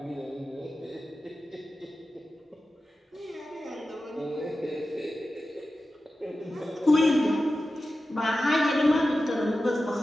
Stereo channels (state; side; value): normal; both; correlation 0.93